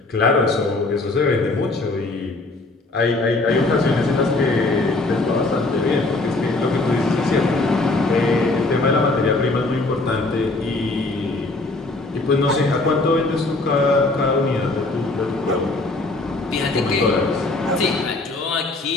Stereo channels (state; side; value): quieter; right; 3.1 dB